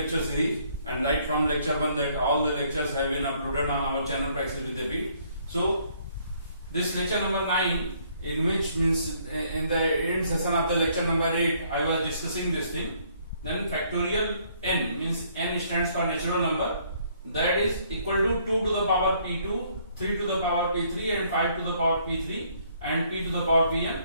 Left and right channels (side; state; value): both; inverted; correlation -0.65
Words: series. And right from lecture 1 that all the lectures have been uploaded on our channel Praxis with the Beat. So this lecture number 9, in which means in the end session of the lecture number 8 I was discussing this thing. Then factorial n means n stands for natural number, that is equal to 2 to the power p2, 3 to the power p3 and 5 to the power p3 and p to the power pn.